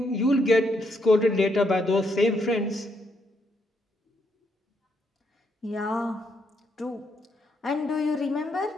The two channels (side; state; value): both; normal; correlation 0.76